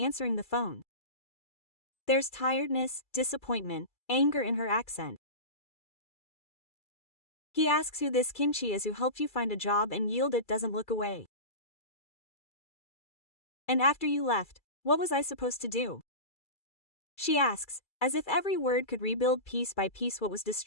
the phone. There's tiredness, disappointment, anger in her accent. He asks who this Kimchi is who helped you find a job and Yildiz doesn't look away. And after you left, what was I supposed to do? She asks, as if every word could rebuild piece by piece what was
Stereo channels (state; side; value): late; right; 2.3 ms